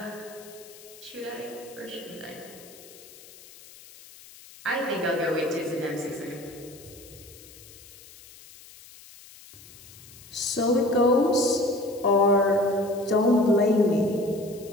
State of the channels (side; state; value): left; noise; hiss, 20 dB below the sound